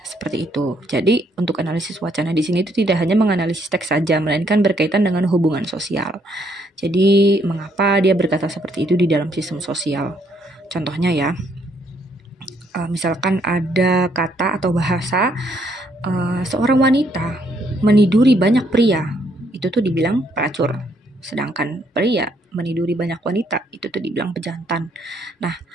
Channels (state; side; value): normal; both; correlation 0.70